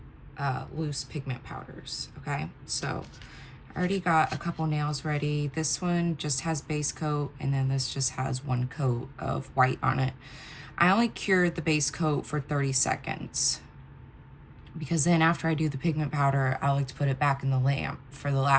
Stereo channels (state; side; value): identical; both; correlation 1.00